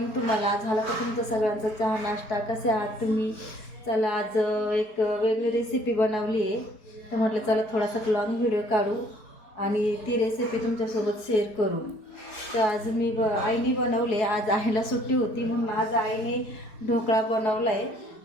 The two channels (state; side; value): late; right; 4.7 ms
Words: तुम्हाला. झाला का तुमचं सगळ्यांचा चहा नाश्ता? कसे आहात तुम्ही? चला, आज एक वेगळी रेसिपी बनवली आहे, तर म्हटलं चला थोडासा लॉंग व्हिडिओ काढू आणि ती रेसिपी तुमच्यासोबत शेअर करू. तर आज आईने बनवले. आज आईला सुट्टी होती म्हणून आज आईने ढोकळा बनवला आहे.